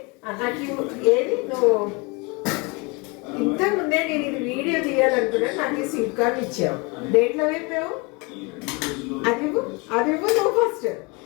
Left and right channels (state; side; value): quieter; right; 28.5 dB